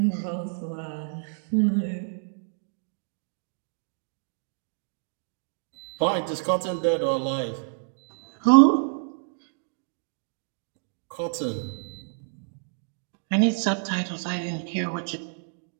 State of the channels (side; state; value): left; silent; digital silence